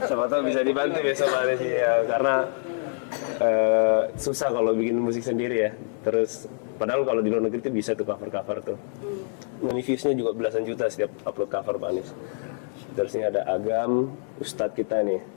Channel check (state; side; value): silent; right; 61 dB below the other